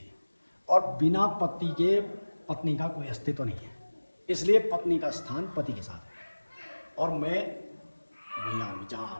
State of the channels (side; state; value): both; inverted; correlation -1.00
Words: और बिना पति के पत्नी का कोई अस्तित्व नहीं है। इसलिए पत्नी का स्थान पति के साथ है, और मैं वहीं आऊँगी जहाँ